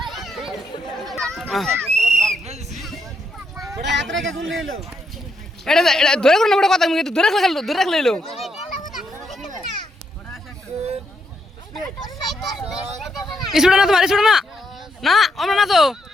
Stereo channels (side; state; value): both; normal; correlation 0.78